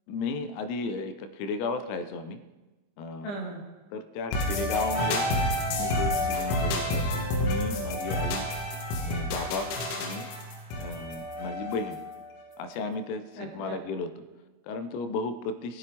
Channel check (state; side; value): late; right; 25 ms